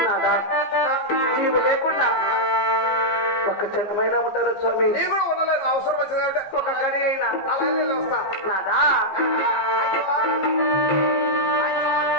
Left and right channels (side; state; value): right; late; 14 ms